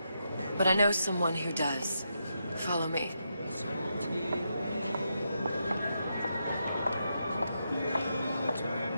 but I know someone who does. Follow me.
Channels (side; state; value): both; inverted; correlation -0.83